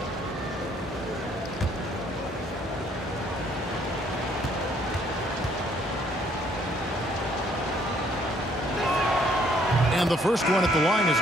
And the first one at the line is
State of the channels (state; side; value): normal; both; correlation 0.65